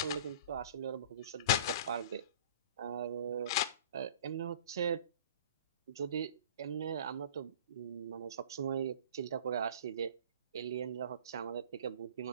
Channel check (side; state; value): both; inverted; correlation -0.44